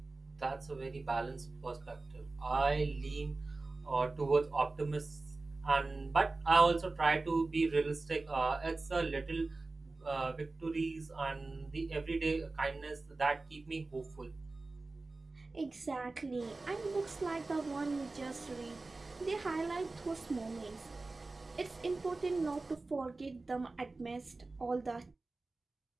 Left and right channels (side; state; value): left; quieter; 3.4 dB